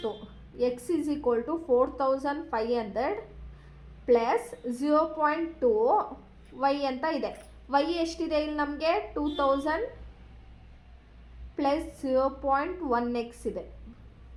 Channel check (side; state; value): both; identical; correlation 1.00